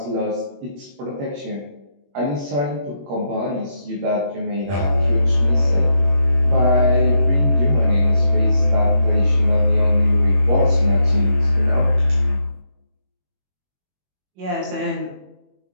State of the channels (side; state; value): left; late; 21 ms